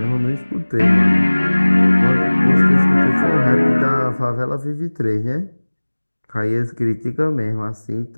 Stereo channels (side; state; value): both; inverted; correlation -1.00